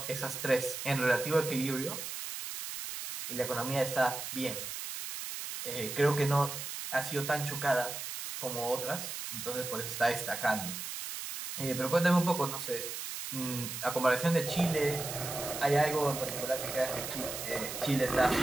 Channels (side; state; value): right; noise; hiss, 6 dB below the sound